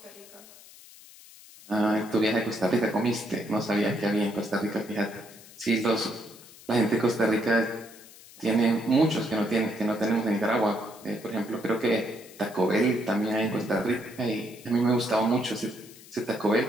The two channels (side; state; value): left; noise; hiss, 21 dB below the sound